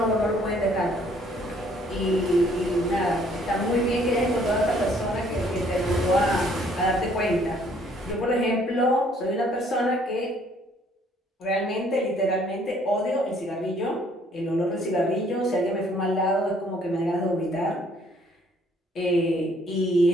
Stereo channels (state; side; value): normal; both; correlation 0.62